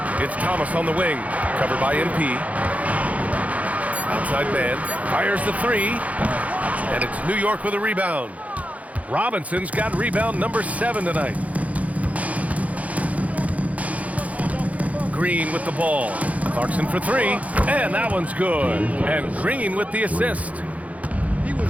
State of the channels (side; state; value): left; late; 0.068 ms